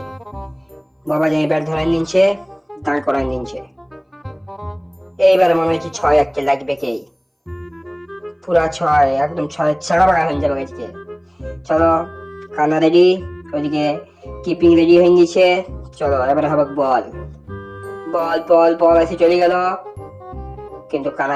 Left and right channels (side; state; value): both; identical; correlation 1.00